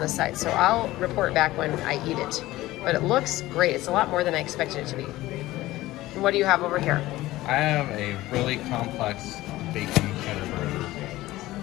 the side. So I'll report back when I eat it. But it looks great. It's a lot more than I expected it to be. And what do you have over here? I have a really complex bacon cheddar burger.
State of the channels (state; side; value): quieter; right; 17.1 dB